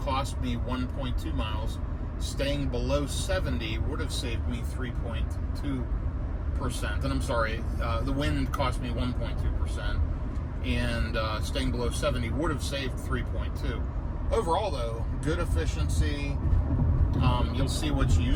me 1.2 miles. Staying below 70 would have saved me 3.2%. And I'm sorry, the wind cost me 1.2%. And staying below 70 would have saved 3.2. Overall, though, good efficiency. You'll see what's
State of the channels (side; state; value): both; identical; correlation 1.00